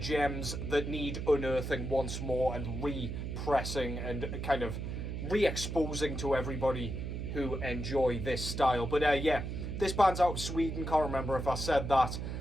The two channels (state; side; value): noise; right; hum, 5 dB below the sound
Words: that need unearthing once more and repressing and kind of re-exposing to everybody who enjoy this style. But yeah, this band's out of Sweden, can't remember if I said that.